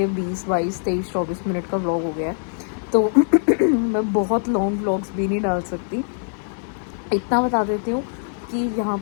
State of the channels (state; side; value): silent; right; digital silence